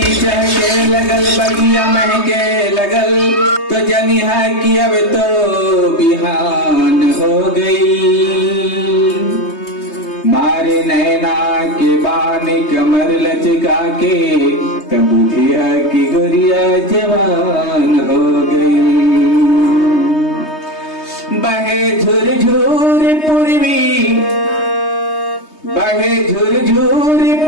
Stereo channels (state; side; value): late; right; 3.2 ms